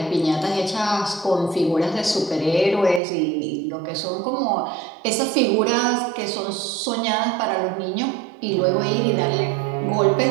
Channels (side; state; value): left; drops out; at 3.0 s